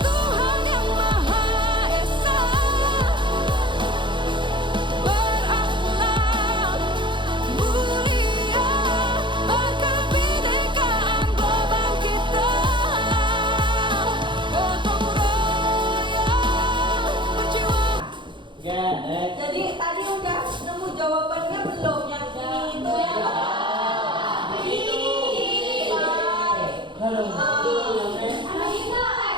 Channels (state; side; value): late; left; 0.23 ms